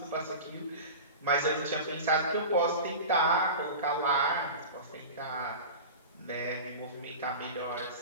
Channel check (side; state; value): both; inverted; correlation -0.31